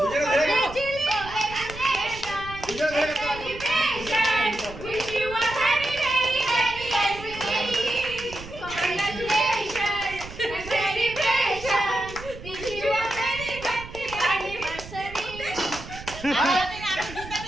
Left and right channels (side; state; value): right; noise; rumble, 14 dB below the sound